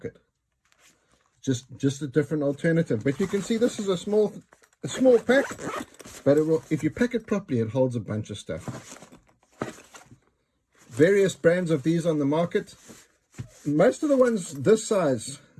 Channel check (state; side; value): identical; both; correlation 1.00